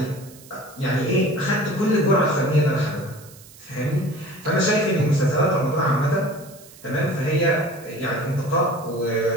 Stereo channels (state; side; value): noise; right; hiss, 21 dB below the sound